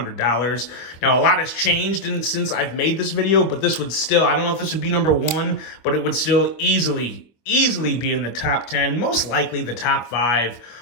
Now a lot has changed since I've made this video, but this would still, I don't know if this would be number one, but it would still easily be in the top 10, most likely the top 5.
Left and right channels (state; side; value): late; right; 25 ms